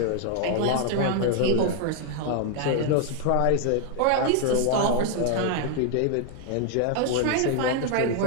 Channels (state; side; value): different; both; correlation 0.00